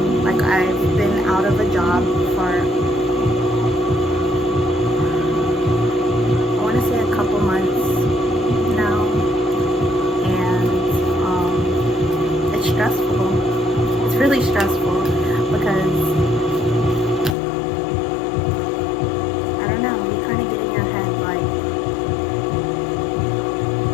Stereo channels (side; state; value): right; drops out; at 17.4 s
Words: Like, I've been out of a job for, I want to say a couple months now, and it's stressful. It's really stressful because I don't know, you kind of get in your head like,